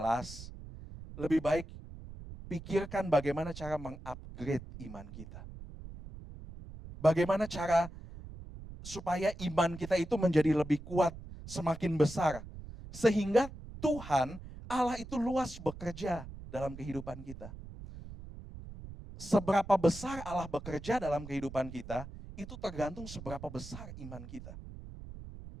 lebih baik pikirkan bagaimana cara mengupgrade iman kita. Bagaimana cara supaya iman kita itu menjadi lebih kuat, semakin besar. Sehingga Tuhan Allah itu luas bekerja dalam kehidupan kita. Seberapa besar Allah bekerja dalam kehidupan kita, itu tergantung seberapa besar iman kita.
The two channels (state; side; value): noise; right; rumble, 13 dB below the sound